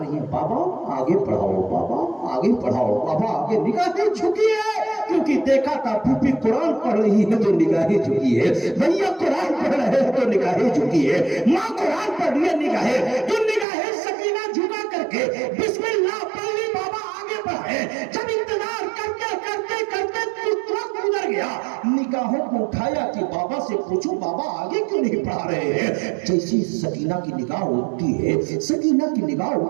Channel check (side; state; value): left; drops out; at 13.7 s